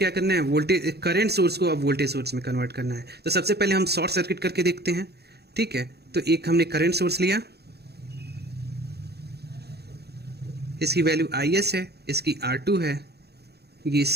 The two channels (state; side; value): late; left; 0.47 ms